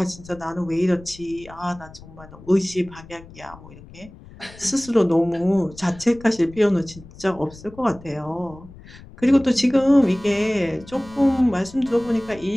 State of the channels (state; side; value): noise; left; rumble, 20 dB below the sound